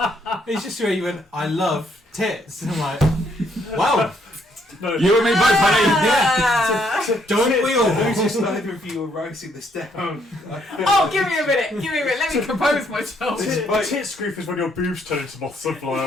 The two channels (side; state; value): both; normal; correlation 0.71